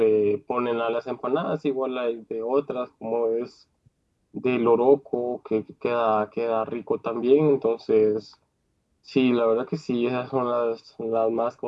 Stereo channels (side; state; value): both; identical; correlation 1.00